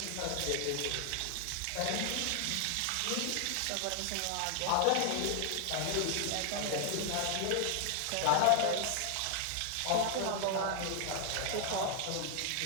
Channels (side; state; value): both; different; correlation 0.00